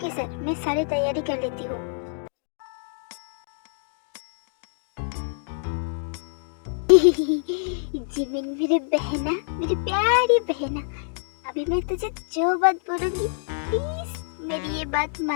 सर, मैं सारी तैयारी कर लेती हूँ। जिमिन मेरी बहना, मेरी प्यारी बहना, अभी मैं तुझे जो बात बोलूंगी प्लीज मेरी ये बात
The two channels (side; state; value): right; silent; digital silence